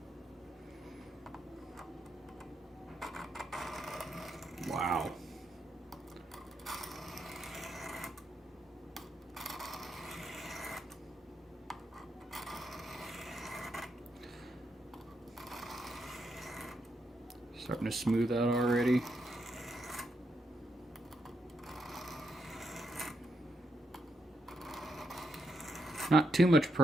Wow. Starting to smooth out already. Not too much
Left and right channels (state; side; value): normal; both; correlation 0.81